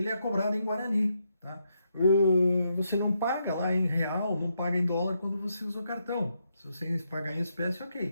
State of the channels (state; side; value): inverted; both; correlation -0.80